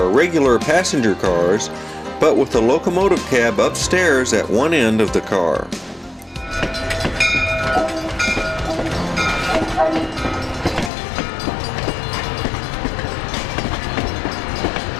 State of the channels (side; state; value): right; drops out; at 10.9 s